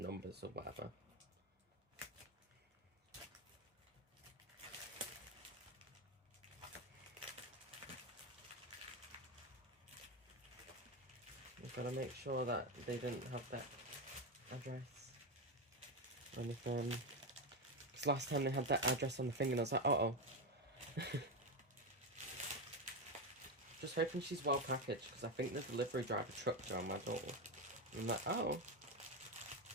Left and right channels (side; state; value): both; normal; correlation 0.11